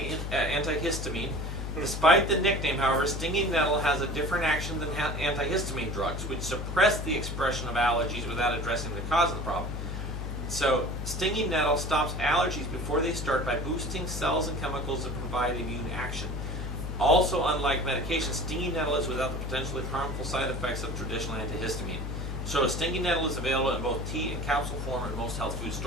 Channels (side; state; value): left; noise; hum, 4 dB below the sound